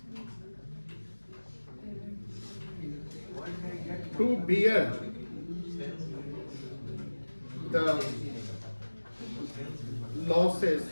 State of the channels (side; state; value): both; inverted; correlation -1.00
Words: To bear the losses